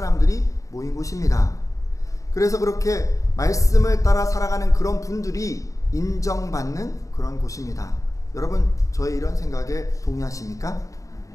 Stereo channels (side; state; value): right; late; 0.16 ms